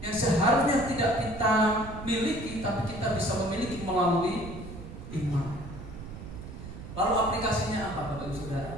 yang seharusnya tidak kita miliki, tapi kita bisa memiliki melalui iman. Lalu aplikasinya apa Bapak Ibu Saudara?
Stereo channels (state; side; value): noise; right; rumble, 11 dB below the sound